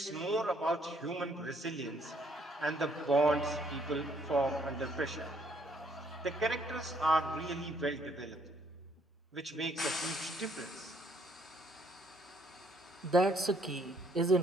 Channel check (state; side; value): normal; both; correlation 0.67